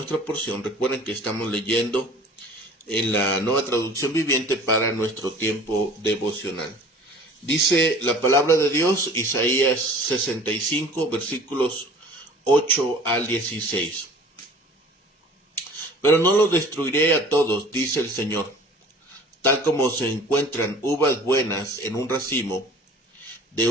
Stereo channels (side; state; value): both; normal; correlation 0.46